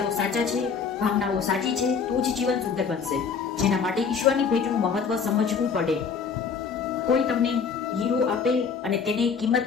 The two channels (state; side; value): quieter; right; 5.9 dB